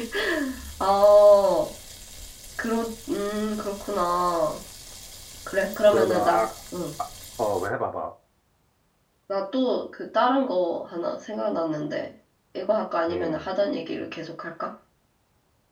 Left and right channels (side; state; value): both; identical; correlation 1.00